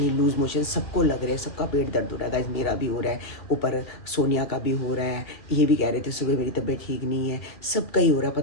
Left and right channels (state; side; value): late; right; 2.0 ms